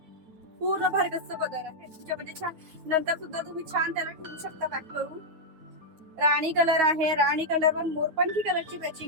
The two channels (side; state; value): left; late; 9.4 ms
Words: पूर्ण भरगच्च पदर आहे त्याच्यामध्ये छान. नंतर सुद्धा तुम्ही छान त्याला ठेवू शकता पॅक करून. राणी कलर आहे. राणी कलर वर मोरपंखी कलरची